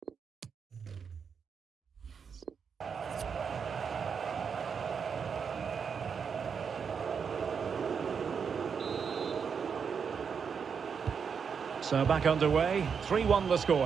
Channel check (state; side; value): quieter; left; 6.4 dB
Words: So back underway, 3-1 the